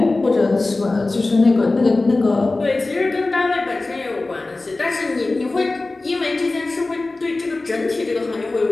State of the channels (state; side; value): quieter; right; 3.2 dB